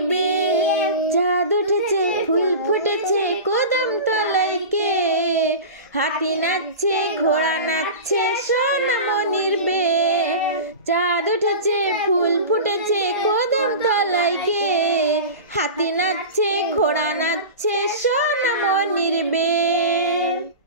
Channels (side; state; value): both; inverted; correlation -0.30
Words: বে। চাঁদ উঠেছে ফুল ফুটেছে কদম তলায় কে, হাতি নাচছে ঘোড়া নাচছে সোনা মনির বে। চাঁদ উঠেছে ফুল ফুটেছে কদম তলায় কে, হাতি নাচছে ঘোড়া নাচছে সোনা মনির বে।